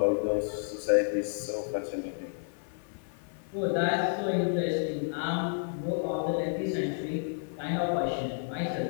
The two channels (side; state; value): right; silent; digital silence